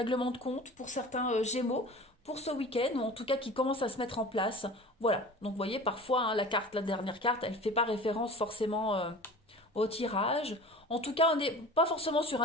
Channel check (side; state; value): both; normal; correlation 0.39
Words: de compte pour certains Gémeaux pour ce week-end, ou en tout cas qui commence à se mettre en place. Voilà. Donc, vous voyez, parfois, hein, la dernière carte, elle ne fait pas référence forcément au tirage. En tout cas, on n'est pas forcément sur